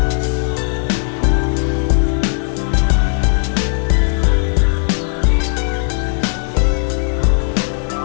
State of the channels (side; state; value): right; silent; 64 dB below the other